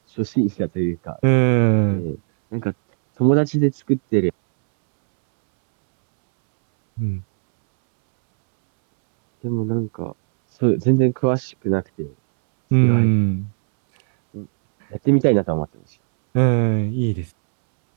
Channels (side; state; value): left; silent; 67 dB below the other